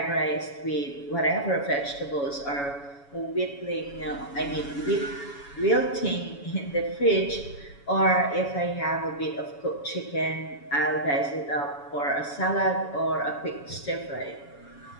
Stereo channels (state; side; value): late; right; 7.1 ms